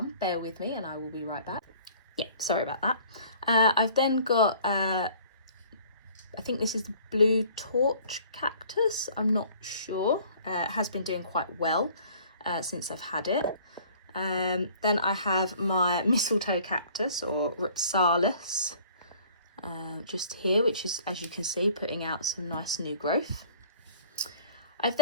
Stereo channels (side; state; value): both; inverted; correlation -0.52